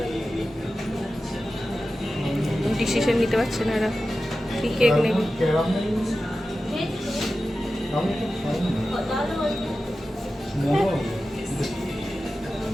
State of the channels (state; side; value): normal; both; correlation 0.93